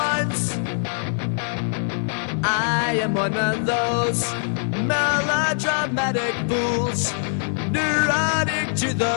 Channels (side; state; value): right; silent; 64 dB below the other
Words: I am one of those melodramatic fools, neurotic to